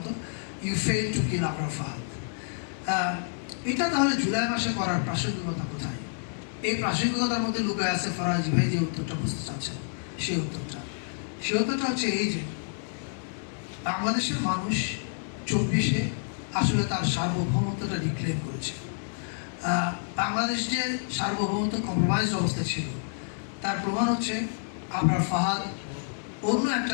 you fail to kill Abrar Fahad. এটা তাহলে জুলাই মাসে করার প্রাসঙ্গিকতা কোথায়? এই প্রাসঙ্গিকতার মধ্যে লুকায় আছে ফরাজি ভাই যে উত্তরটা বুঝতে চাচ্ছেন, সেই উত্তরটা হচ্ছে এই যে বাংলাদেশের মানুষ 24-এ আসলে তার সার্বভৌমত্বটা ডিক্লেয়ার করেছে। বাংলাদেশ যে সার্বভৌমত্ব কম্প্রোমাইজ অবস্থা ছিল, তার প্রমাণ হচ্ছে আবরার ফাহাদ অন্য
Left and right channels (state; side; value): silent; right; 59 dB below the other